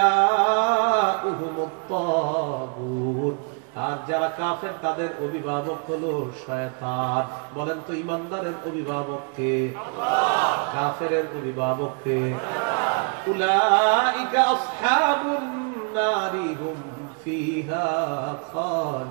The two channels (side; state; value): left; quieter; 39.0 dB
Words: তাগুত, আর যারা কাফের তাদের অভিভাবক হলো শয়তান। বলেন তো ঈমানদারের অভিভাবক কে? আল্লাহ। কাফেরের অভিভাবক কে? শয়তান। উলাইকা আসহাবুন নারি হুম ফিহা